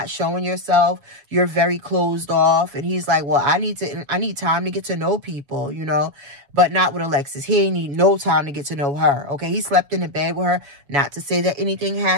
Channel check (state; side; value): late; left; 7.1 ms